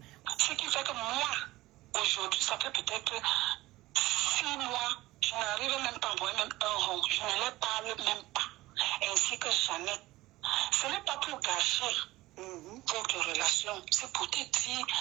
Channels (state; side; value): quieter; left; 18.2 dB